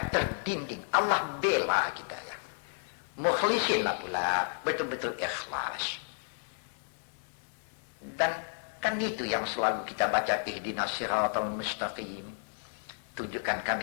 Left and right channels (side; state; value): right; silent; digital silence